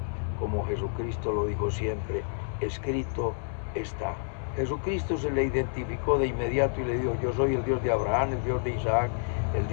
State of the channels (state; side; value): silent; right; 59 dB below the other